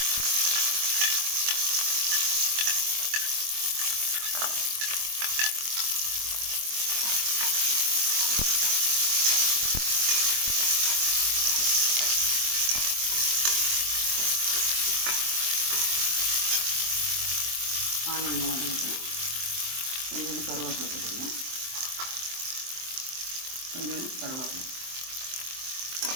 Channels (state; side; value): late; left; 23 ms